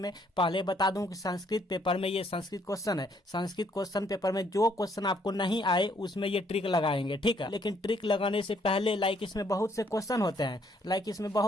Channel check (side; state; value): both; normal; correlation 0.68